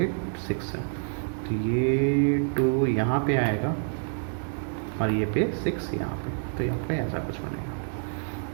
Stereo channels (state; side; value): silent; left; digital silence